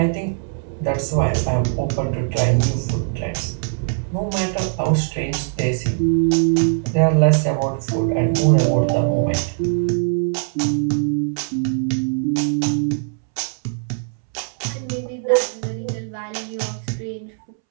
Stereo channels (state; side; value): silent; left; 65 dB below the other